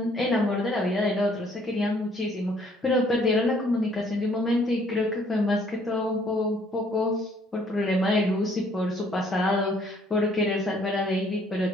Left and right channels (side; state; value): both; normal; correlation 0.62